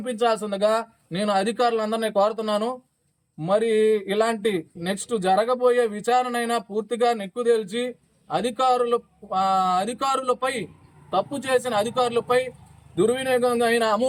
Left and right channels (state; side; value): identical; both; correlation 1.00